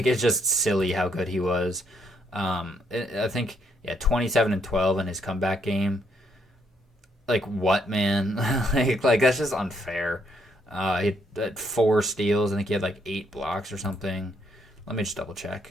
it's just silly how good he was. I think 27 and 12 in his comeback game. Like what, man? like that's just unfair. He had 4 steals. I think he had like 8 blocks or something. Let me just double check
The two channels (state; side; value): normal; both; correlation 0.73